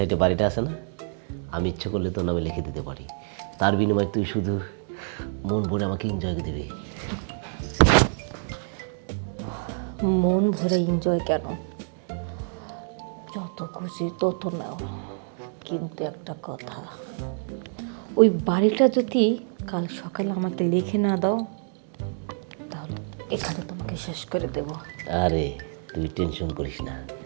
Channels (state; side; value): silent; left; 60 dB below the other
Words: বাড়িটা আছে না, আমি ইচ্ছে করলে তোর নামে লিখে দিতে পারি। তার বিনিময়ে তুই শুধু মন ভরে আমাকে এনজয় দিবি। মন ভরে এনজয় কেন, যত খুশি তত নাও, কিন্তু একটা কথা, ওই বাড়িটা যদি কাল সকালে আমাকে লিখে না দাও তাহলে এখানে তোমাকে শেষ করে দেব। আরে তুই টেনশন করিস না,